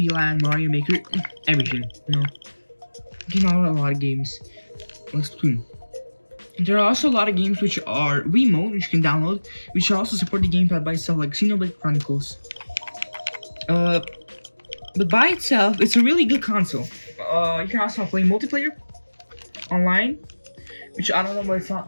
Land, Mario Maker, everything, you know. You know, a lot of games. Let's Splatoon. There are also a lot of games which are remote, which you can download, which also support the gamepad by itself, like Xenoblade Chronicles. But by itself, it's a really good console. You can also play multiplayer online, which I don't know why it's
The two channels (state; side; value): inverted; both; correlation -1.00